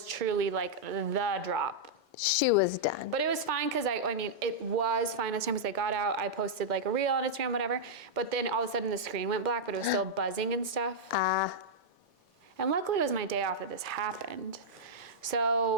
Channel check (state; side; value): normal; both; correlation -0.06